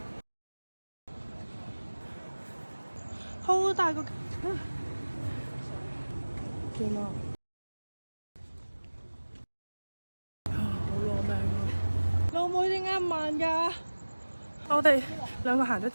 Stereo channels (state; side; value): inverted; both; correlation -1.00